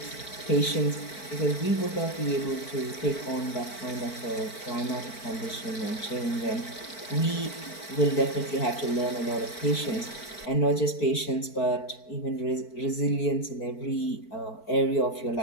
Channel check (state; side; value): late; right; 4.5 ms